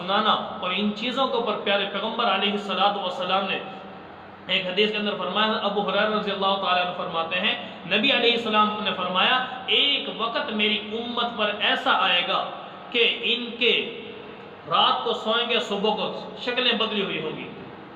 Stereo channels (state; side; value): identical; both; correlation 1.00